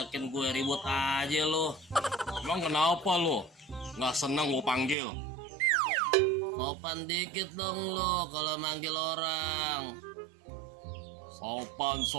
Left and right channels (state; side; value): drops out; left; at 5.0 s